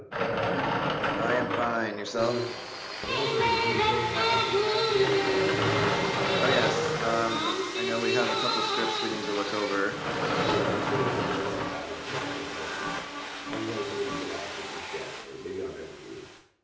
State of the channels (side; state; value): both; identical; correlation 1.00